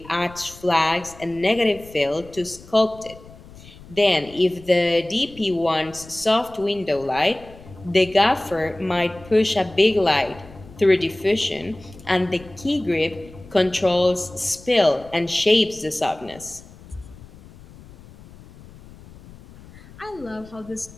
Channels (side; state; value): left; noise; rumble, 20 dB below the sound